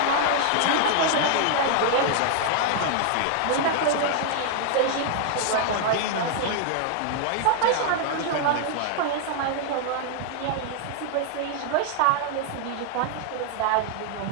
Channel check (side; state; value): both; different; correlation 0.00